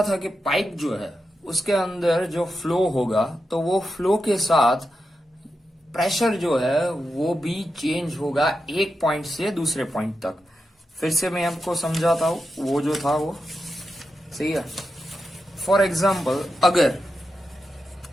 था कि पाइप जो है उसके अंदर जो फ्लो होगा तो वो फ्लो के साथ प्रेशर जो है वो भी चेंज होगा एक पॉइंट से दूसरे पॉइंट तक। फिर से मैं आपको समझाता हूं, वो जो था वो सही है। फॉर एग्जाम्पल, अगर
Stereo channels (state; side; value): normal; both; correlation 0.88